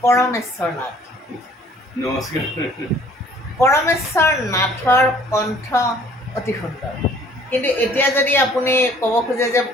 পৰমেশ্বৰ নাথ। নমস্কাৰ। পৰমেশ্বৰ নাথৰ কণ্ঠ অতি সুন্দৰ, কিন্তু এতিয়া যদি আপুনি ক'ব খোজে যে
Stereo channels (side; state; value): both; normal; correlation 0.56